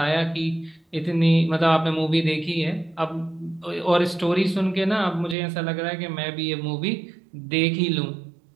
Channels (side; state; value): left; drops out; at 5.4 s